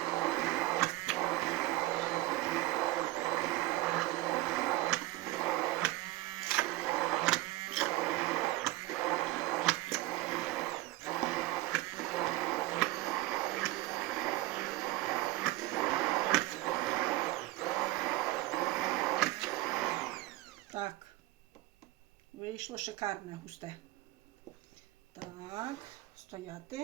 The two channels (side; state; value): left; quieter; 18.1 dB